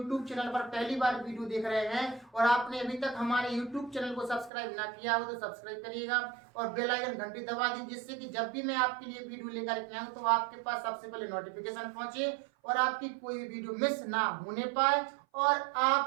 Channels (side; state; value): left; drops out; at 4.5 s